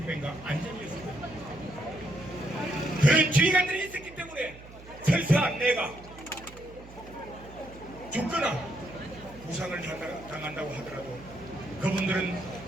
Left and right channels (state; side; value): noise; right; hum, 18 dB below the sound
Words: 안전이었습니다. 그런 지휘관들이 있었기 때문에 설사 내가 죽거나 부상을 당한다고 하더라도 그분들은